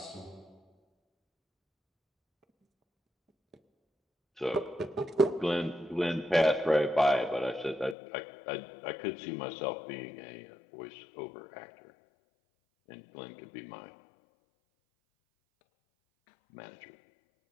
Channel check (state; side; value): drops out; right; at 8.0 s